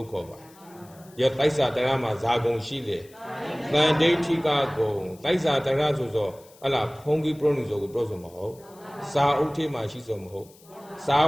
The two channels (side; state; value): left; noise; hiss, 26 dB below the sound